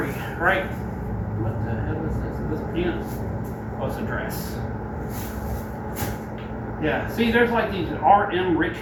right? What the hell is this? Is this pants? Oh, it's a dress. Yeah, see, there's like these R.M.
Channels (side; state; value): both; identical; correlation 1.00